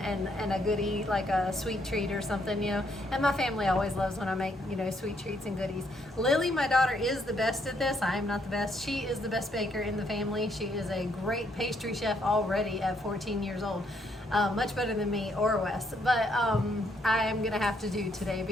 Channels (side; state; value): both; normal; correlation 0.72